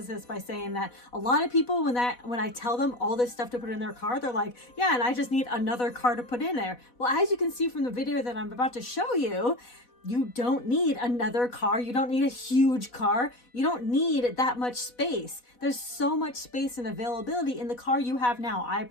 this by saying that a lot of people, when I tell them all this stuff to put in their car, they're like, yeah, and I just need another car to put in there. Well, as you can see from the video that I'm about to show you, you don't need another car. You don't need a huge car. You don't need that much space. There's so much space and availability in the car you have now. I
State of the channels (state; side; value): late; right; 4.1 ms